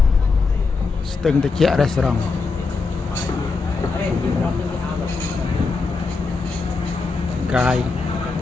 ស្ទឹងត្រជាក់រេស្តូរ៉ង់ កាយ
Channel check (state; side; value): quieter; right; 4.3 dB